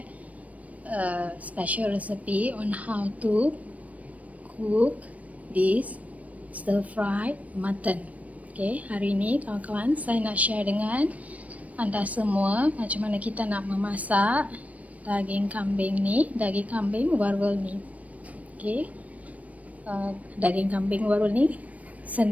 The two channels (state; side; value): late; left; 0.069 ms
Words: a special recipe on how to cook this stir fried mutton. Okay, hari ini kawan-kawan saya nak share dengan anda semua macam mana kita nak memasak daging kambing ni, daging kambing Varuval ni. Okay, daging kambing Varuval ni